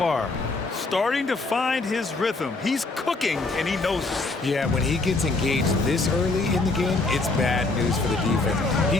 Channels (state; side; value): quieter; right; 3.4 dB